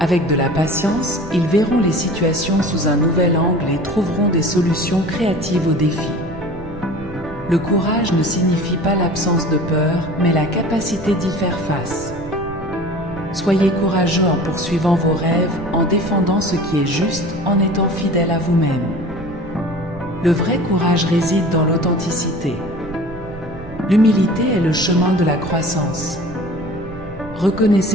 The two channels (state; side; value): noise; right; rumble, 15 dB below the sound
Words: Avec de la patience, ils verront les situations sous un nouvel angle et trouveront des solutions créatives aux défis. Le courage ne signifie pas l'absence de peur, mais la capacité d'y faire face. Soyez courageux en poursuivant vos rêves, en défendant ce qui est juste, en étant fidèle à vous-même. Le vrai courage réside dans l'authenticité. L'humilité est le chemin de la croissance.